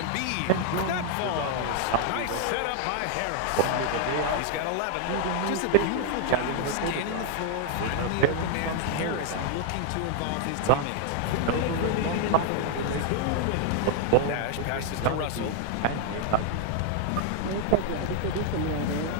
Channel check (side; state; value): both; different; correlation 0.00